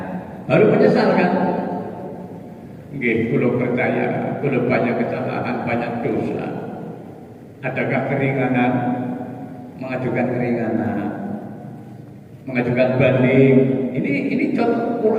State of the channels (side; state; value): both; identical; correlation 1.00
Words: baru menyesal kan? Nggih, kula percaya, kula banyak kesalahan, banyak dosa. Adakah keringanan? Mengajukan keringanan, mengajukan banding. Ini contoh